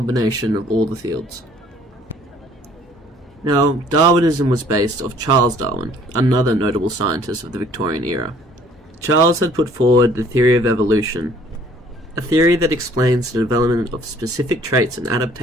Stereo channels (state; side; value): normal; both; correlation 0.57